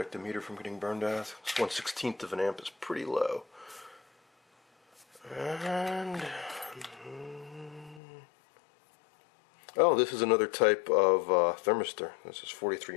the meter from getting burned out. This 1/16th of an amp is pretty low. And oh, this is another type of thermistor. This is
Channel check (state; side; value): drops out; right; at 8.0 s